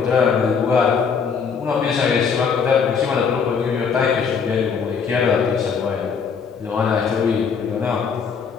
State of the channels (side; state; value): right; quieter; 6.1 dB